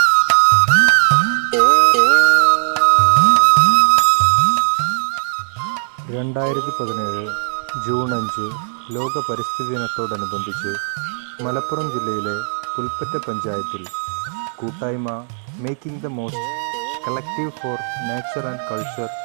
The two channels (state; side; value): silent; left; digital silence